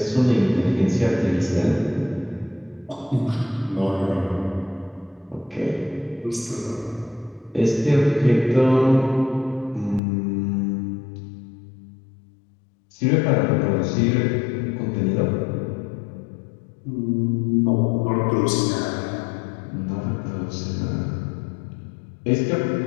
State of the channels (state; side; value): drops out; right; at 10.0 s